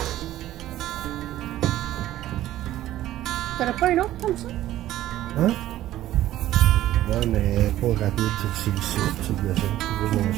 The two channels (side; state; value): left; quieter; 13.8 dB